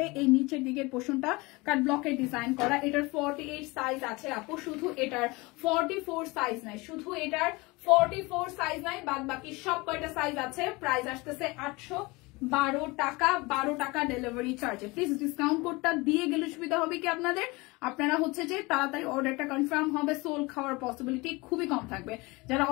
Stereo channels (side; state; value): right; quieter; 24.1 dB